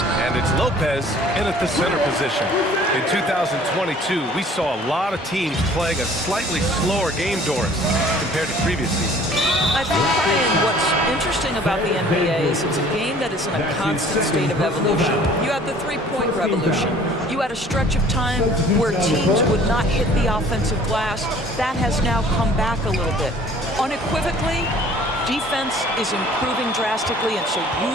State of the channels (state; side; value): normal; both; correlation 0.52